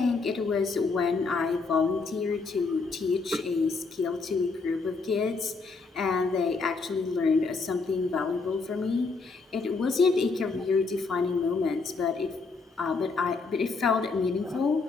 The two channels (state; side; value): quieter; right; 4.2 dB